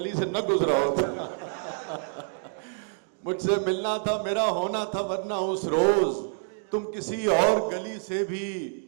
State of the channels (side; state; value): left; silent; digital silence